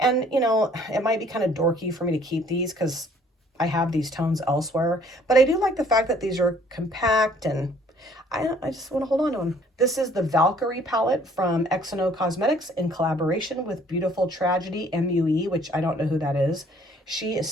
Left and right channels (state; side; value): normal; both; correlation 0.59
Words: you know, it might be kind of dorky for me to keep these because I have these tones elsewhere, but I do like the fact that these are compact and I just want to hold on to them. This is the Valkyrie palette from Eyeshadow Cosmetics in collaboration with Beautiful Tragedy MUE, which I don't know who that is. She is